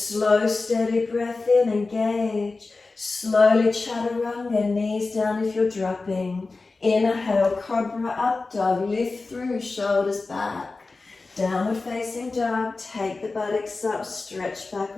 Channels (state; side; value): quieter; right; 3.7 dB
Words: steady breath in, engage. Slowly chaturanga, knees down if you're dropping. Inhale, cobra up dog, lift through, shoulders back. Downward facing dog, take the buttocks up, stretch back